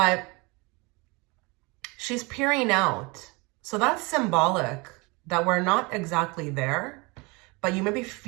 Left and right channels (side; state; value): left; quieter; 26.7 dB